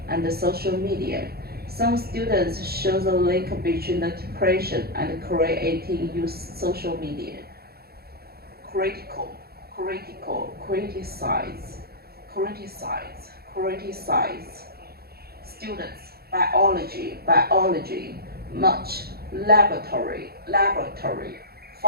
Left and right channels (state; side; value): late; left; 0.45 ms